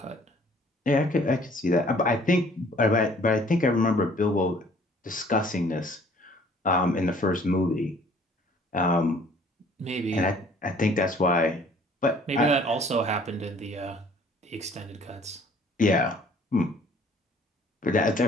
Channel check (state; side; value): normal; both; correlation 0.56